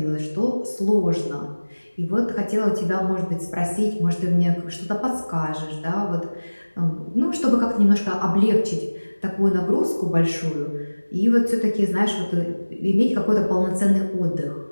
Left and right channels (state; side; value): inverted; both; correlation -1.00